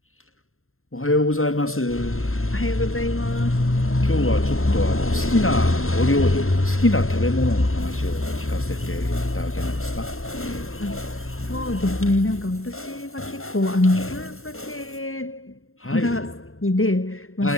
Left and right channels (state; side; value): late; right; 0.61 ms